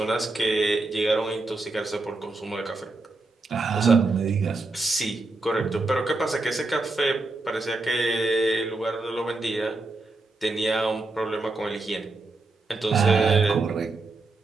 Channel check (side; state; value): left; quieter; 3.3 dB